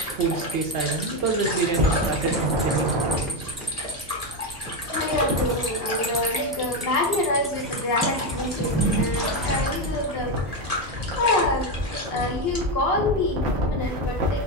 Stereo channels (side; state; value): both; normal; correlation 0.11